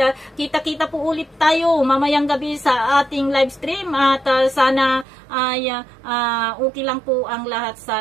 kita-kita po ulit tayo mamayang gabi sa ating live stream, at sana ay okay lang po ang lahat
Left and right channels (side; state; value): left; drops out; at 5.1 s